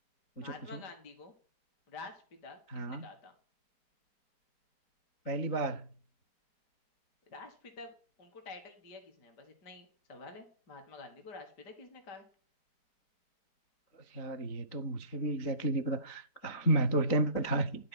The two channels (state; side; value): late; right; 4.0 ms